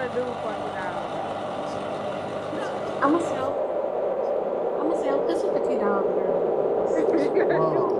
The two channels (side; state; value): both; identical; correlation 1.00